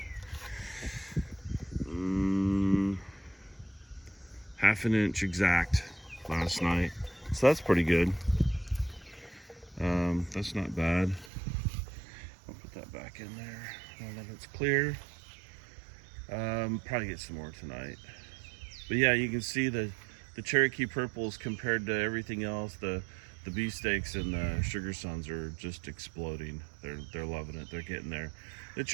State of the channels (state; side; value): drops out; left; at 11.3 s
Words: half an inch exact last night, so that's pretty good. That's not bad. I'll put that back in there now that it's clear. Probably get some more tonight. But yeah, you can see the Cherokee purples compared to everything else. The beefsteaks and the sugar suns are just exploding. They're loving it. They're getting there. The